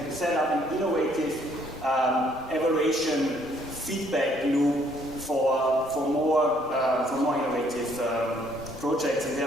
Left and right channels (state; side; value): normal; both; correlation 0.65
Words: set up an innovative evaluation feedback loop for more innovative projects, and